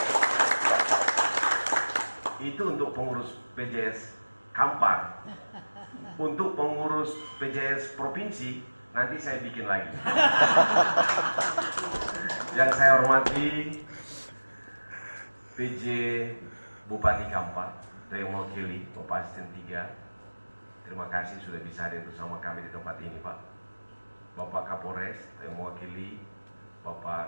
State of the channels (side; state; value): both; inverted; correlation -1.00